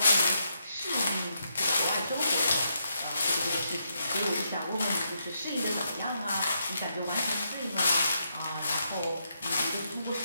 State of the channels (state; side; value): inverted; both; correlation -0.80